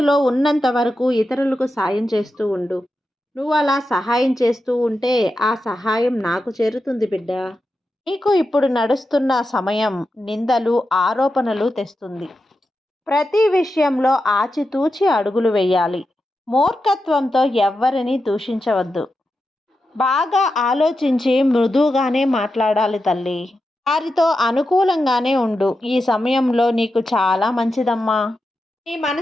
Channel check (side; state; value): both; normal; correlation 0.89